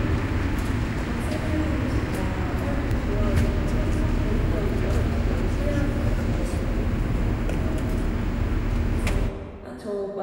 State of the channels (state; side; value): identical; both; correlation 1.00